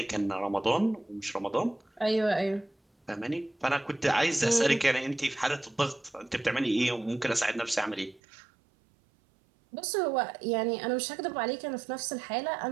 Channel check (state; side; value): drops out; left; at 8.2 s